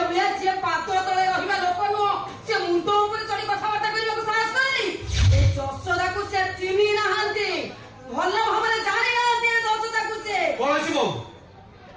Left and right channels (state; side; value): identical; both; correlation 1.00